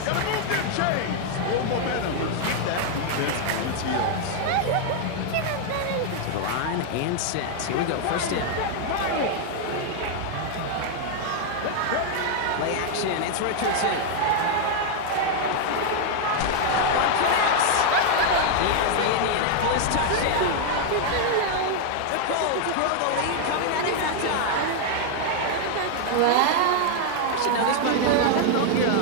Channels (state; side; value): different; both; correlation 0.00